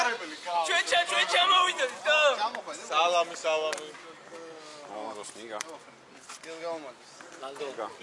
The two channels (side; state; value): both; identical; correlation 1.00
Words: ჩვენ მოვიდეთ და სალამი როსნიგა გელგაუმადეს ლანდოგა